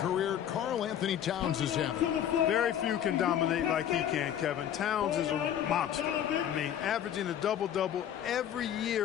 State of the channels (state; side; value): quieter; right; 10.1 dB